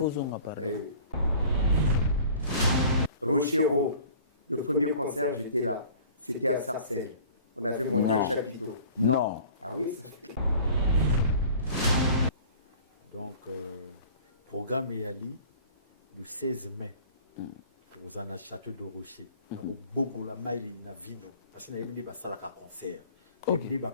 on apparaît. Rochero. Le premier concert, j'étais là. C'était à Sarcelles. On avait monté un chapiteau. Non. Ah oui, ça fait. Donc, programme Yali, le 16 mai, pour un château de Rocher. Donc, beaucoup la maille na vino. Parce qu'il y a des salaka concert. Il y a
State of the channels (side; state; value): both; inverted; correlation -0.47